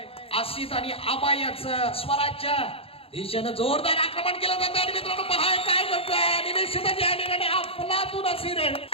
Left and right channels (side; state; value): right; late; 0.27 ms